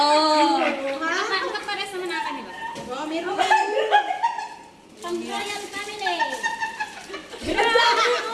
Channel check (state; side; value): identical; both; correlation 1.00